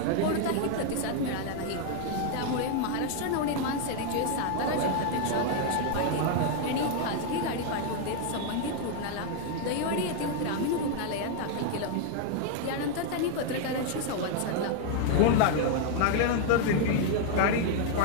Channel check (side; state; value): both; different; correlation 0.00